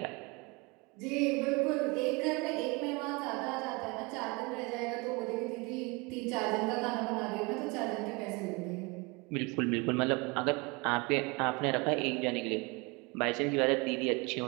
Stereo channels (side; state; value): left; quieter; 27.2 dB